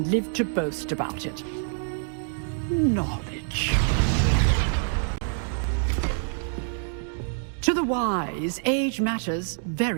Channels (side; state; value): left; silent; 61 dB below the other